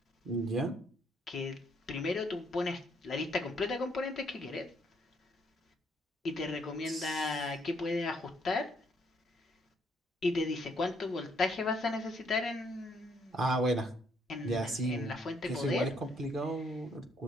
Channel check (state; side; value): normal; both; correlation 0.70